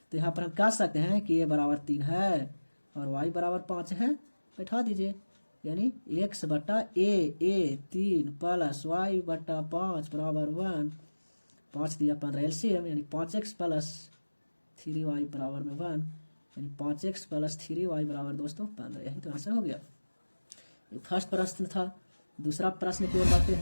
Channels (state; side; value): inverted; both; correlation -1.00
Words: तो यहाँ पर हम कह सकते हैं कि a बराबर 3 है और y बराबर 5 है। बैठा दीजिए, यानी x/a 3 प्लस y/5 बराबर 1, 5 दिया 15 LCM, यानी 5x प्लस 3y बराबर में 1, यानी 5x प्लस 3y बराबर दोस्तों 15। यही तो आंसर हो गया। ये फर्स्ट प्रश्न था। दूसरा प्रश्न की ओर बढ़ते